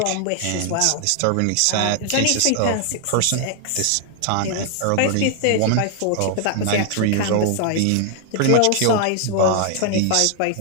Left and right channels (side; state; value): both; different; correlation 0.00